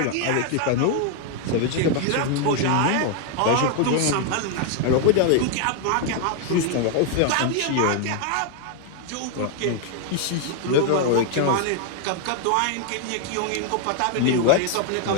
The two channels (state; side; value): different; both; correlation 0.00